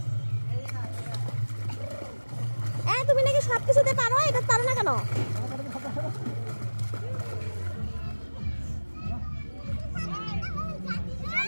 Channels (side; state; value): both; inverted; correlation -1.00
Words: এই তুমি নাকি সব কিছুতে পারো, এটা পারো না কেন?